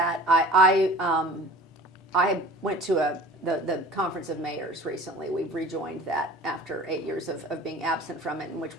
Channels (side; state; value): both; normal; correlation 0.43